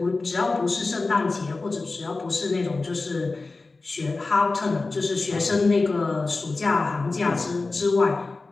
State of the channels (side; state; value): right; quieter; 3.6 dB